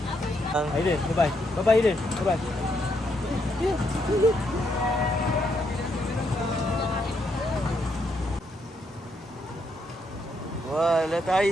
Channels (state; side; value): normal; both; correlation 0.76